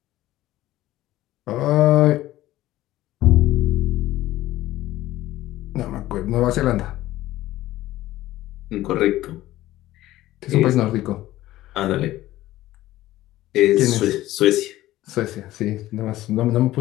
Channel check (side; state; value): right; quieter; 15.6 dB